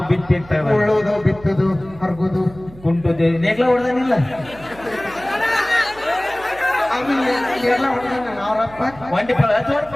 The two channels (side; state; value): right; noise; hum, 20 dB below the sound